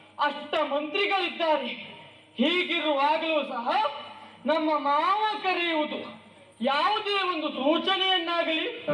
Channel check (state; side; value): identical; both; correlation 1.00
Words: ಅಷ್ಟ ಮಂತ್ರಿಗಳಿದ್ದಾರೆ. ಹೀಗಿರುವಾಗಲೂ ಸಹ ನಮ್ಮ ಮಾವ ಕರೆಯುವುದು ಯಾವುದೇ ಒಂದು ಸೂಚನೆಯನ್ನಾಗಲಿ,